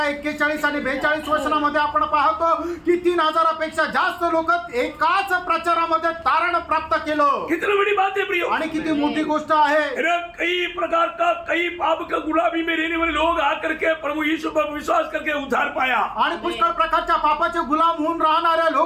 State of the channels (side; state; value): both; identical; correlation 1.00